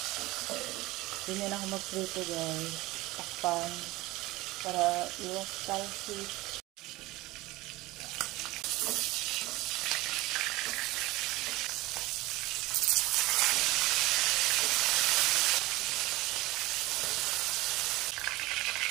Ganyan ako magprito guys. Takpan para iwas talsik.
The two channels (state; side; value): quieter; left; 19.9 dB